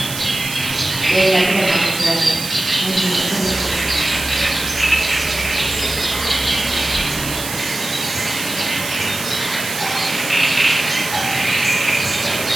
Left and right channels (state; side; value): noise; right; hiss, 7 dB below the sound